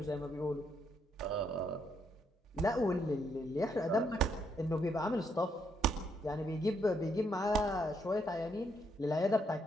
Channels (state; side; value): normal; both; correlation 0.75